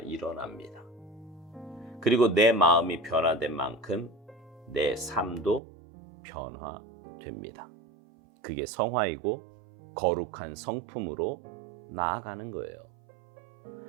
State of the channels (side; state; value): left; drops out; at 5.6 s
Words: 그리고 내 마음이 변화된 만큼 내 삶도 변화됩니다. 그게 성화이고 거룩한 성품으로 나아가는 거예요.